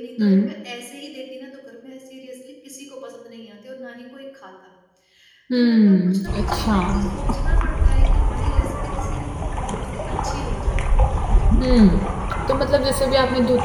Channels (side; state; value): both; identical; correlation 1.00